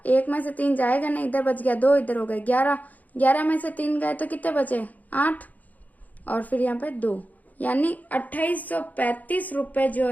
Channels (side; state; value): right; late; 0.079 ms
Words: 1 में से 3 जाएगा नहीं, इधर बच गया 2, इधर हो गए 11, 11 में से 3 गए तो कितने बचे 8 और फिर यहाँ पे 2, यानी 2835 रुपए जो